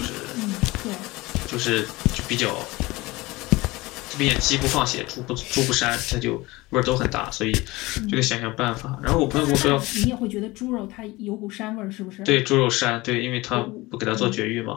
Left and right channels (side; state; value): right; quieter; 21.2 dB